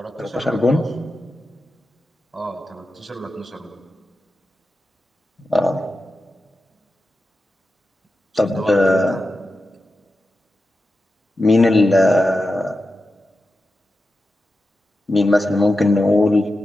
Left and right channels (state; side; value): normal; both; correlation 0.91